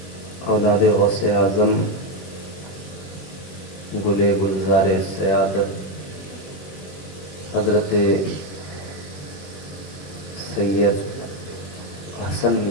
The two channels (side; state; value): right; late; 21 ms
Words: اولاد غوث اعظم گلے گلزار سیادت حضرت سید حسن